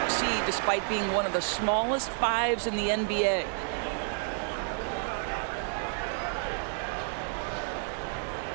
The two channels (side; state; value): left; silent; 57 dB below the other